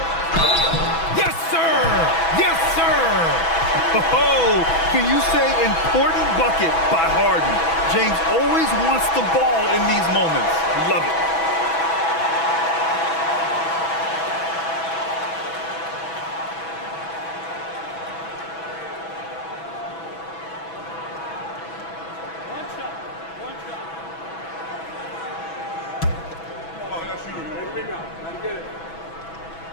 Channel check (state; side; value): late; right; 6.1 ms